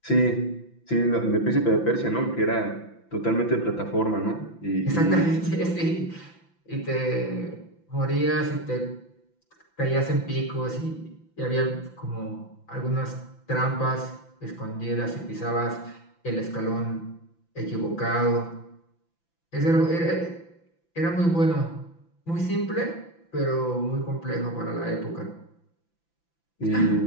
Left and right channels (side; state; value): right; late; 5.9 ms